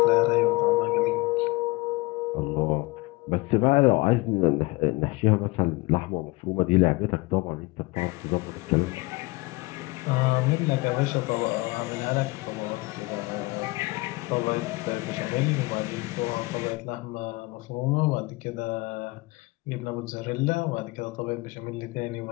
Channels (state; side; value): quieter; right; 23.3 dB